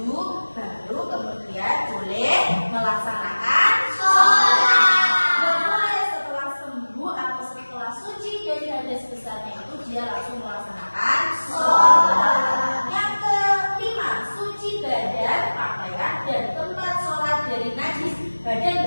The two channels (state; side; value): inverted; both; correlation -1.00